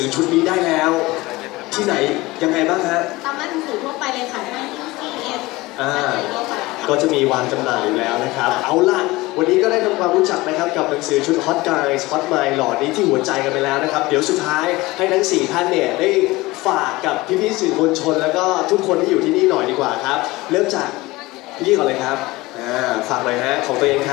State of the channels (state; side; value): quieter; right; 20.5 dB